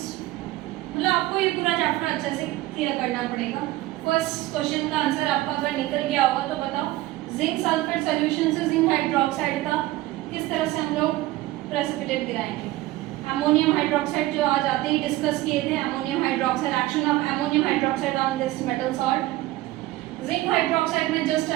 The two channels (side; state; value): left; quieter; 17.4 dB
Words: मतलब आपको ये पूरा चैप्टर अच्छे से क्लियर करना पड़ेगा। फर्स्ट क्वेश्चन का आंसर आपका अगर निकल गया होगा तो बताओ, जिंक सल्फेट सॉल्यूशन से जिंक हाइड्रोक्साइड का किस तरह से हम लोग प्रेसिपिटेट गिराएंगे। अमोनियम हाइड्रोक्साइड जो आज आते ही डिस्कस किए थे, ammonium hydroxide, action of ammonium hydroxide on this metal salt. Zinc hydroxide में जस्ट